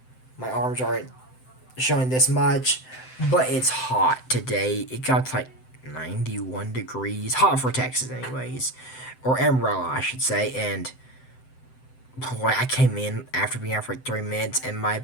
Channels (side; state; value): right; late; 7.8 ms